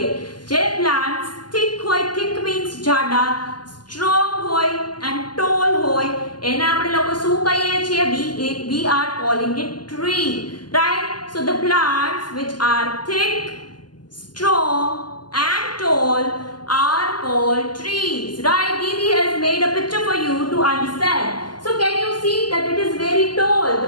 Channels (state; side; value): late; right; 0.71 ms